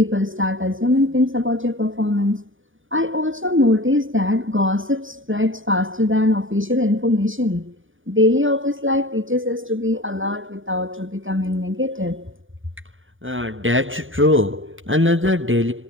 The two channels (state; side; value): late; left; 0.57 ms